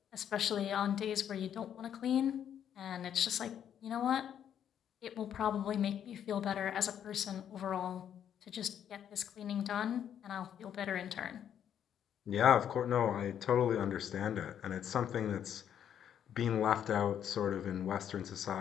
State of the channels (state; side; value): quieter; right; 9.4 dB